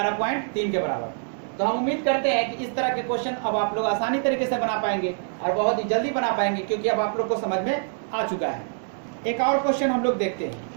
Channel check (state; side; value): silent; left; digital silence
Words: के बराबर। तो हम उम्मीद करते हैं कि इस तरह के क्वेश्चन अब आप लोग आसानी तरीके से बना पाएंगे और बहुत ही जल्दी बना पाएंगे, क्योंकि अब आप लोग को समझ में आ चुका है। एक और क्वेश्चन हम लोग देखते हैं।